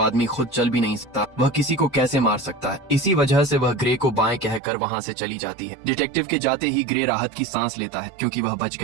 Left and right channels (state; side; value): drops out; left; at 4.6 s